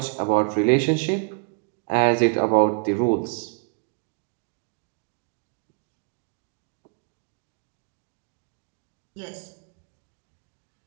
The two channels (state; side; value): quieter; left; 36.9 dB